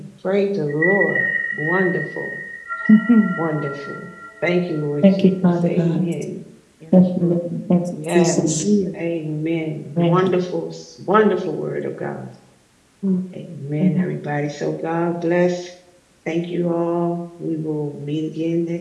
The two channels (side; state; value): both; identical; correlation 1.00